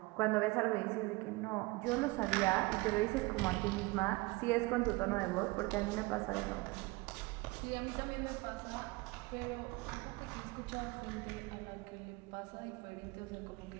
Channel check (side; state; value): left; quieter; 23.4 dB